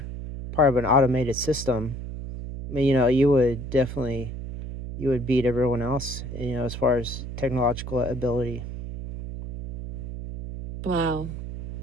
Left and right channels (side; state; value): right; noise; hum, 8 dB below the sound